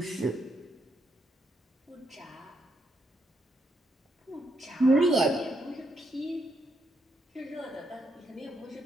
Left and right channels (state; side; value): normal; both; correlation 0.78